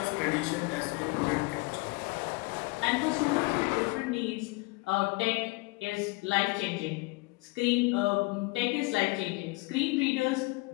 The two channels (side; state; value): right; quieter; 25.1 dB